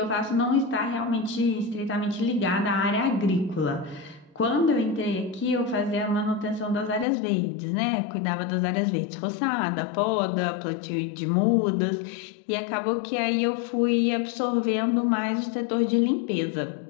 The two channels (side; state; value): right; drops out; at 7.1 s